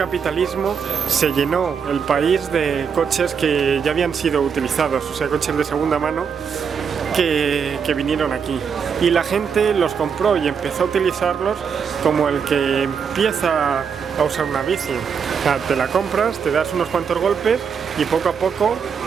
se llenó el país de coches que ya habían sido utilizados, o sea, coches de segunda mano que vinieron aquí. Y la gente los compró y empezó a utilizarlos como el que empieza a usar una bici. O sea, te la compras, te das unos cuantos golpes y poco a poco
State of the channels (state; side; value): quieter; left; 6.6 dB